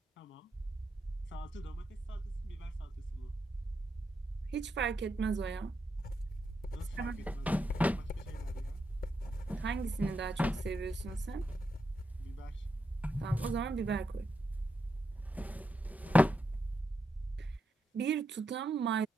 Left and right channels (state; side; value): normal; both; correlation 0.84